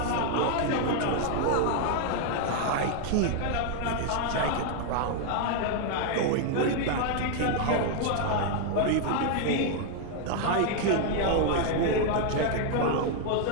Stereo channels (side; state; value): both; different; correlation 0.00